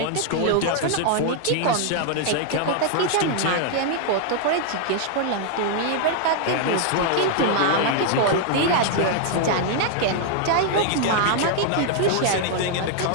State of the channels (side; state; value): both; different; correlation 0.00